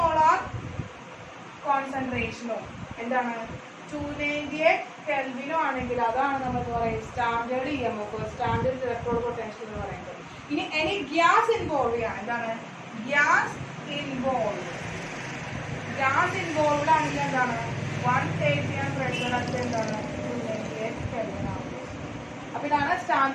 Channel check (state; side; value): identical; both; correlation 1.00